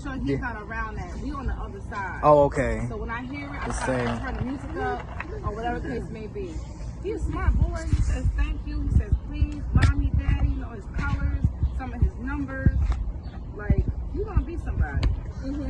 he's not around that. We on the other side. Oh, okay. So when I hear it, I The try to same. turn the music up or whatever the case may be. He's a smart boy. He says thank you. He says please, mommy, daddy. You know his colors, some of his numbers. Like you gonna be somebody. And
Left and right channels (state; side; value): identical; both; correlation 1.00